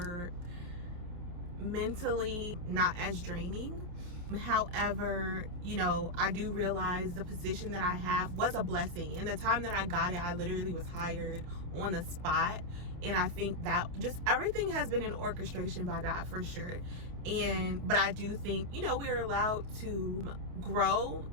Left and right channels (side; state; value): left; late; 28 ms